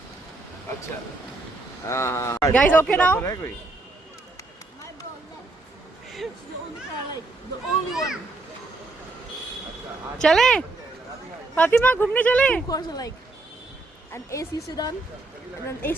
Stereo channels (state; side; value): quieter; left; 3.1 dB